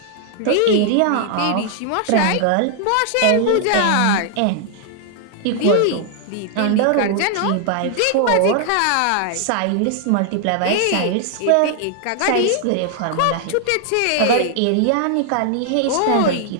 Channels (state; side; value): different; both; correlation 0.00